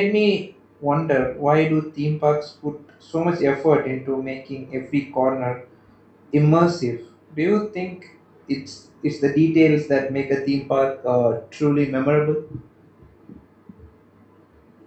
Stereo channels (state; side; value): identical; both; correlation 1.00